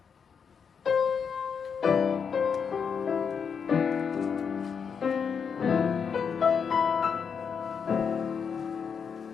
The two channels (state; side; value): quieter; right; 6.5 dB